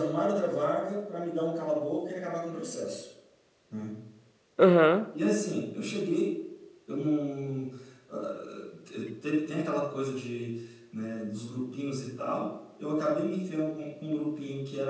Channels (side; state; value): both; identical; correlation 1.00